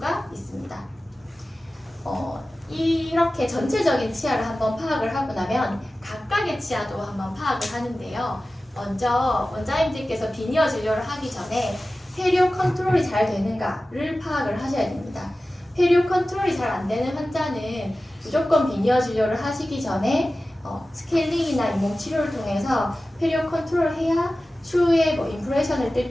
있습니다. 이렇게 전체적인 치아를 한번 파악을 하고 나면 각각의 치아도 한번 파악을 하는데요. 먼저 원장님들께서 비니어 진료를 하기 전에 페리오 컨트롤이 잘 되는가를 파악을 하셔야 됩니다. 페리오 컨트롤이 잘 안 되는 환자는 무조건 비니어 진료를 하시기 전에 스케일링이나 인공 치료를 통해서 페리오 컨트롤을 해야 추후에 인프레션을 뜰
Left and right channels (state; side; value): normal; both; correlation 0.95